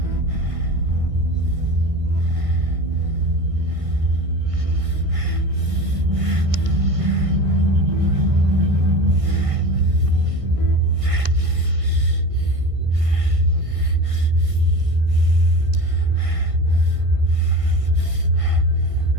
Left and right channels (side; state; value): left; late; 1.6 ms